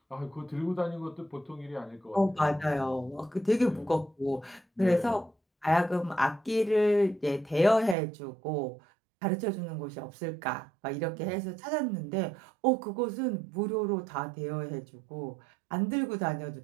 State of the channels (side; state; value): left; drops out; at 8.0 s